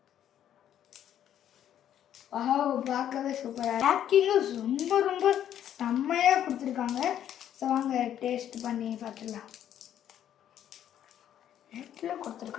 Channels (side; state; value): right; quieter; 10.5 dB